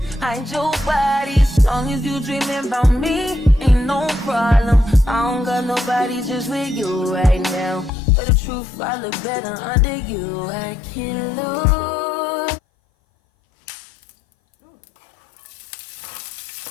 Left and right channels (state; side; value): drops out; right; at 7.9 s